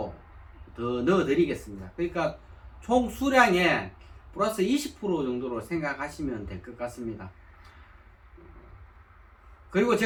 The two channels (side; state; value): both; identical; correlation 1.00